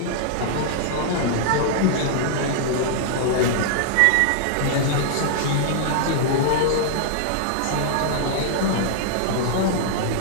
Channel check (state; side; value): different; both; correlation -0.01